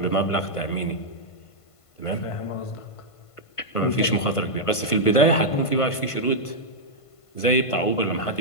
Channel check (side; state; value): right; late; 1.5 ms